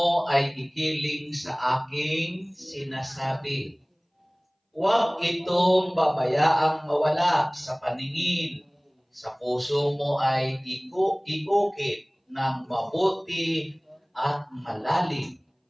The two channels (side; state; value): both; identical; correlation 1.00